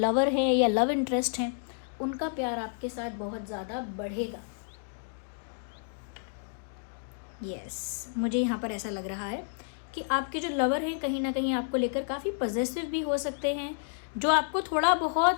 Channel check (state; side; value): silent; right; digital silence